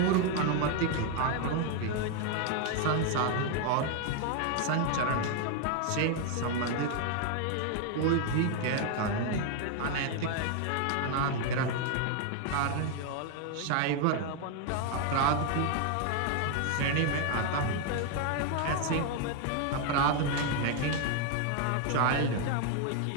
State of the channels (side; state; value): both; different; correlation 0.01